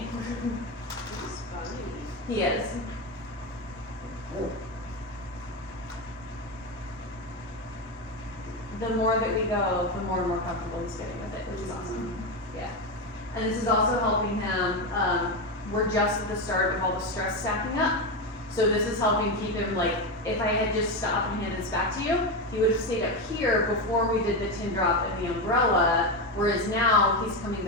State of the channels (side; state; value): both; normal; correlation 0.13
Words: He's funny. He is. The more that we go, the more and more comfortable he's getting with it, which is awesome. Yeah. And this is also helping him, we're just at the start of all the stress stacking up. So this is helping keep him like, if I had just stopped and handed this back to you, he would have stayed up here before we did the tin drop and the umbrella, whereas now he's coming